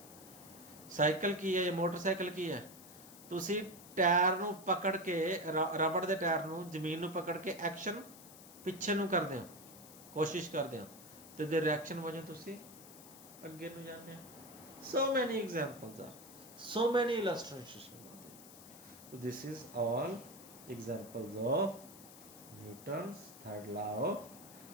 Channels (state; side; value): noise; left; hiss, 18 dB below the sound